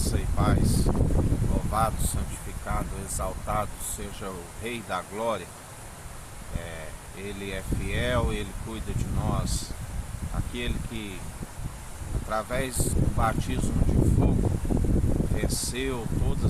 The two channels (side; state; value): both; identical; correlation 1.00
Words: e paz. Louvado, santificado, exaltado seja o Rei da Glória. Ele é fiel, Ele cuida de nós. Aquele que, através do batismo de fogo, venceu